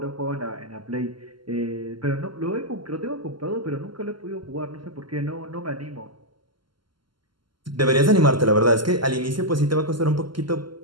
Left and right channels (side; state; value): left; late; 0.72 ms